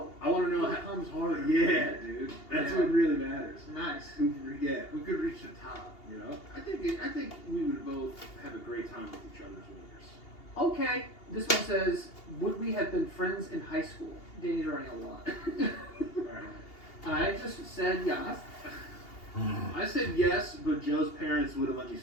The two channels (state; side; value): late; right; 2.8 ms